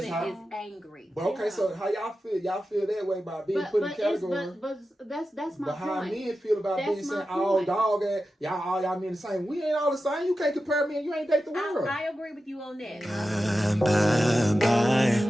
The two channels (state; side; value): normal; both; correlation 0.92